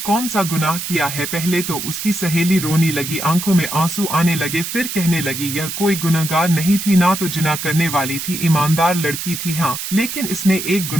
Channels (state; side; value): noise; right; hiss, 6 dB below the sound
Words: सा गुनाह किया है? पहले तो उसकी सहेली रोने लगी, आंखों में आंसू आने लगे। फिर कहने लगी यह कोई गुनहगार नहीं थी, ना तो जिना करने वाली थी, ईमानदार लड़की थी। हाँ, लेकिन इसने एक